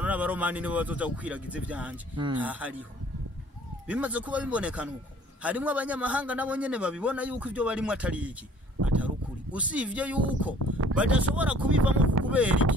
n'abaromani nibo bazoza gukwiragiza ivyanje hariho bimaze kuba bibonekana uko harimo abanyamahanga nabo nyene babibona yuko ivyo barimo atari iki atarukuri usivye yuko badashobora kubivamo kubera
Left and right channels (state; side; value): normal; both; correlation 0.55